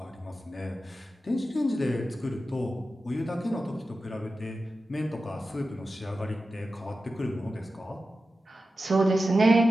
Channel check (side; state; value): both; normal; correlation 0.93